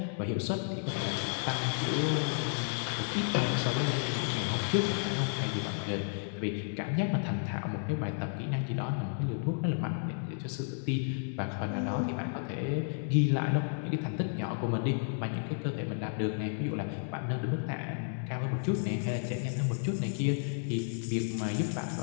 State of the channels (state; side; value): silent; right; digital silence